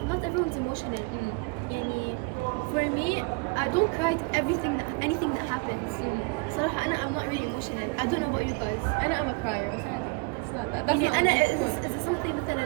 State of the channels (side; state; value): left; quieter; 31.1 dB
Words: not everyone's emotional. يعني for me, I don't cry at anything that happens. صراحة I'm not really emotional. I don't know about you guys. I'm a crier. It's not that. That's يعني not أنا the point. is something